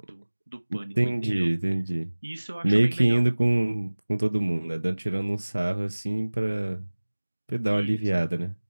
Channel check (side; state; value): both; inverted; correlation -1.00